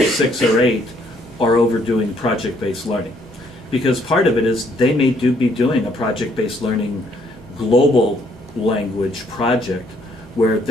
6 or 8 are overdoing project-based learning. Because part of it is they may be doing a project-based learning global language project where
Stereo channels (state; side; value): normal; both; correlation 0.67